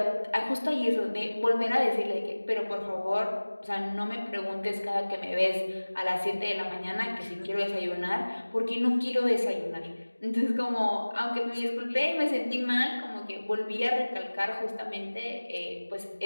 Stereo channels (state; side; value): inverted; both; correlation -1.00